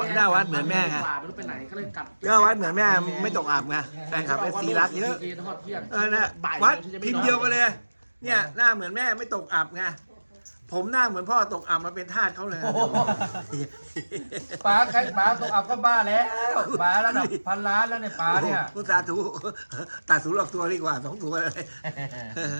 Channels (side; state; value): both; inverted; correlation -1.00